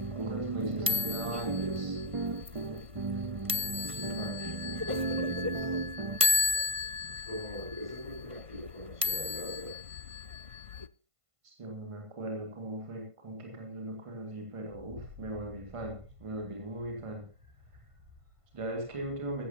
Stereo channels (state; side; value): late; left; 1.5 ms